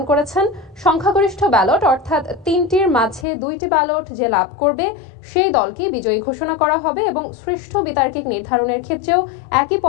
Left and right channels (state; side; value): drops out; right; at 3.2 s